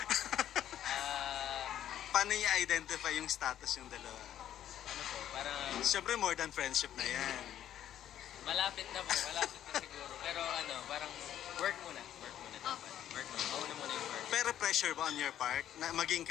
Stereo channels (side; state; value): right; quieter; 11.1 dB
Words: Paano i-identify yung status yung dalawa? Ano po, parang... Siyempre more than friendship na yan. Malapit na po, malapit na siguro. Pero ano, parang work muna. Work muna. Mauna muna yung work. Pero pressure ba on your part na maging